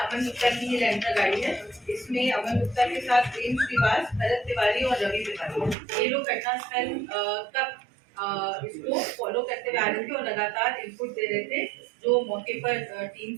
गुप्ता की एलेक्ट्रा गाड़ी है। इसमें अमन गुप्ता के साथ प्रेम श्रीवास, भरत तिवारी और रवि तिवारी, ये लोग घटनास्थल तक इसको फॉलो करते हुए आ रहे थे और लगातार इनपुट दे रहे थे जो मौके पर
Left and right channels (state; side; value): drops out; left; at 5.8 s